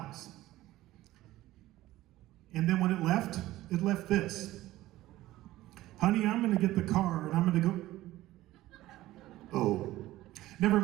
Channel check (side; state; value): left; quieter; 16.2 dB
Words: And then when it left this. Honey, I'm gonna get the car and I'm gonna go, oh, never